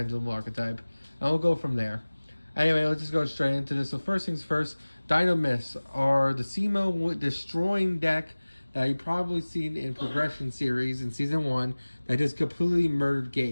archetype. And we'll go from there. Anyway, let's just go straight into this. So first things first, Dinomists are the Simo destroying deck that you've probably seen in Progression Series in Season 1 that just completely murdered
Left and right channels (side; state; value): both; inverted; correlation -1.00